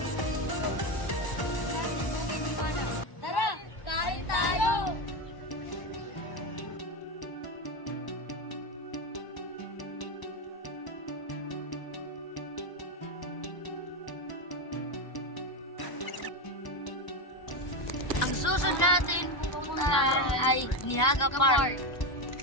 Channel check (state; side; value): late; right; 1.0 ms